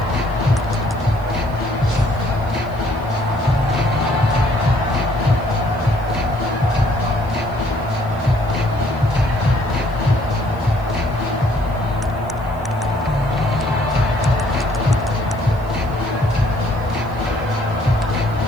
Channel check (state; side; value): noise; left; hiss, 29 dB below the sound